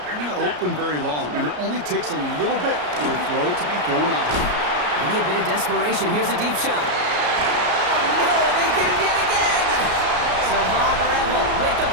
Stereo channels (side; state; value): left; late; 33 ms